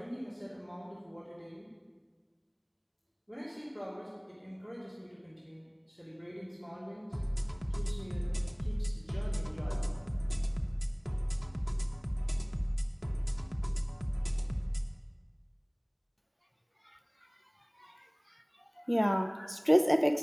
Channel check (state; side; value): identical; both; correlation 1.00